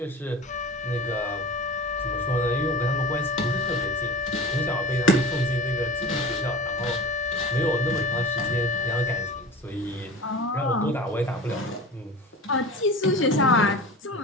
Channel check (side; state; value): both; normal; correlation 0.35